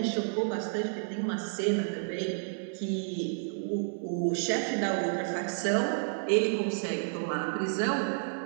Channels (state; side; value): silent; left; digital silence